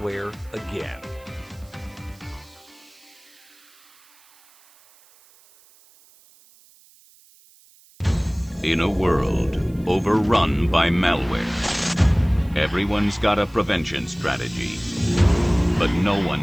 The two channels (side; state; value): right; noise; hiss, 28 dB below the sound